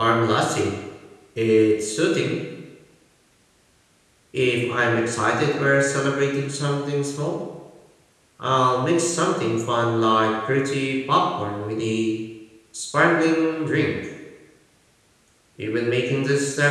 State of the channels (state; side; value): identical; both; correlation 1.00